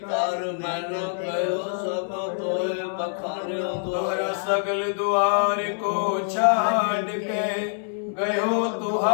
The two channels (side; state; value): right; silent; 62 dB below the other